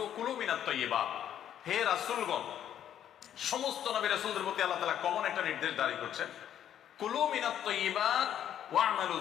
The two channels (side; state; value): right; quieter; 10.2 dB